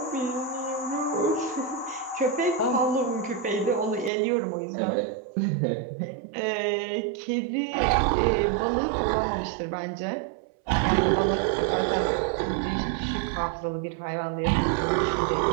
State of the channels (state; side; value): drops out; left; at 4.1 s